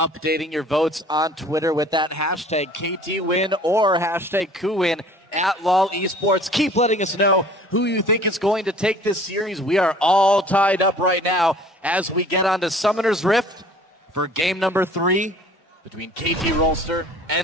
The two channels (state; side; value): normal; both; correlation 0.50